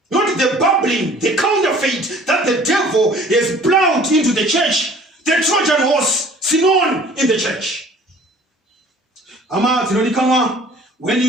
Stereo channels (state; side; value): normal; both; correlation 0.51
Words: Not the babbling, the counterfeit that the devil has plowed into the church. The Trojan horse, Sinon in the church. When